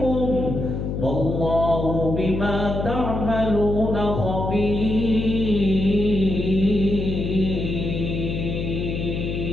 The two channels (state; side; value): noise; left; hum, 3 dB below the sound